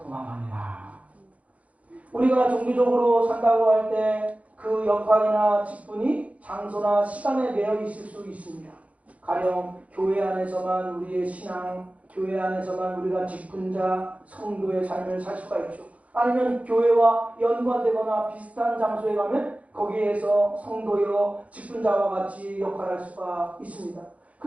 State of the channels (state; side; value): late; left; 0.066 ms